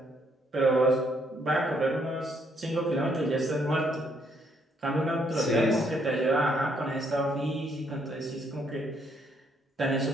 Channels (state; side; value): normal; both; correlation 0.71